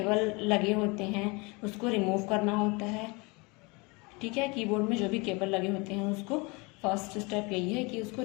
लगे होते हैं उसको रिमूव करना होता है। ठीक है, कीबोर्ड में जो भी केबल लगे होते हैं उसको फर्स्ट स्टेप यही है कि उसको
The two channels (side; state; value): right; quieter; 27.7 dB